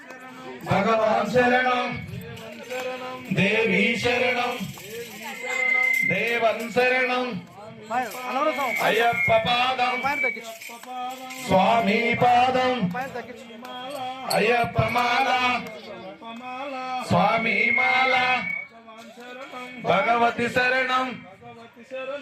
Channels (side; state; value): both; identical; correlation 1.00